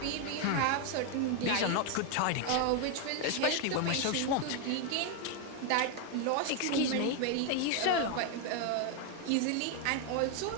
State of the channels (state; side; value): different; both; correlation 0.01